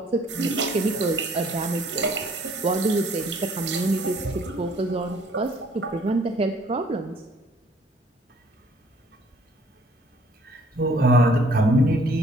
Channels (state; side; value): normal; both; correlation 0.58